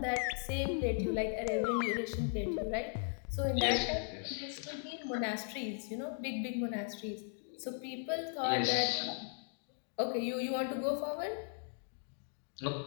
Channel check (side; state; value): right; silent; 53 dB below the other